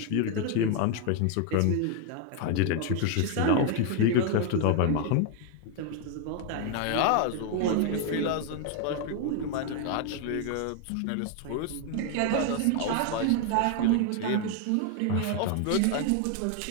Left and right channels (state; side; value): different; both; correlation 0.01